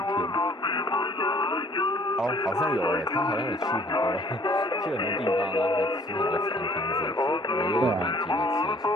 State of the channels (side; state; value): both; normal; correlation 0.57